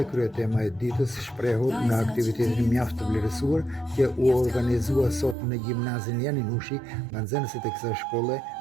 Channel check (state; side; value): drops out; left; at 5.4 s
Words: kryetema e ditës shprehur në aktivitetin mjaft të vlerësuar që u organizua sot në gjimnazin Janinushi nga nxënësit e kësaj shkolle